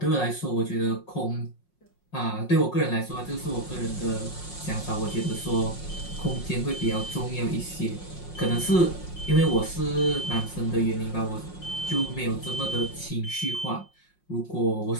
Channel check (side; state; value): right; late; 5.5 ms